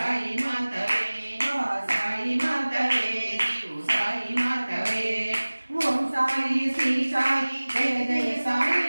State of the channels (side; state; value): both; inverted; correlation -1.00